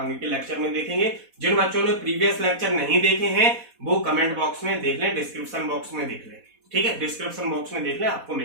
के लेक्चर में देखेंगे। जिन बच्चों ने प्रीवियस लेक्चर नहीं देखे हैं वो कमेंट बॉक्स में देख लें, डिस्क्रिप्शन बॉक्स में देख लें, ठीक है, डिस्क्रिप्शन बॉक्स में देख लें, आपको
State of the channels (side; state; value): left; late; 4.1 ms